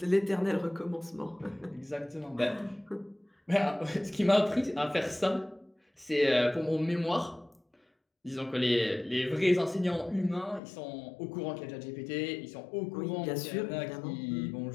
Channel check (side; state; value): right; drops out; at 10.6 s